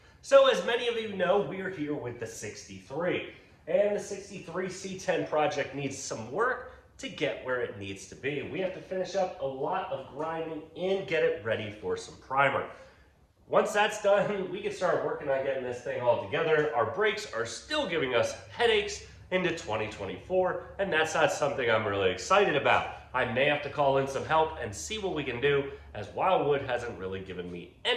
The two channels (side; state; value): both; identical; correlation 1.00